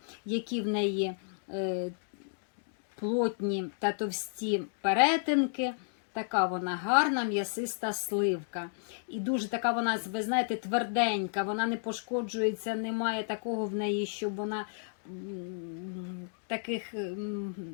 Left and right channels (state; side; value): silent; right; digital silence